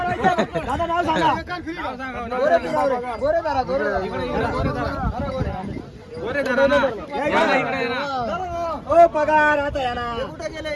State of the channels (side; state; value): both; identical; correlation 1.00